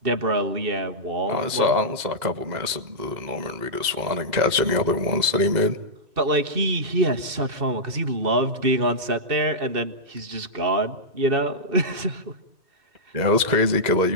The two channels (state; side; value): late; left; 2.1 ms